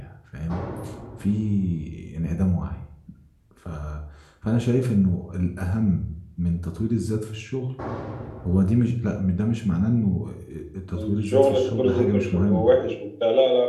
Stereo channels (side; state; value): both; identical; correlation 1.00